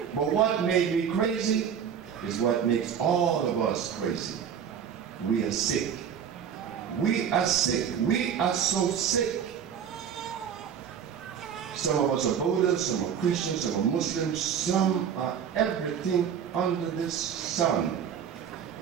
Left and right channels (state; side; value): quieter; left; 8.1 dB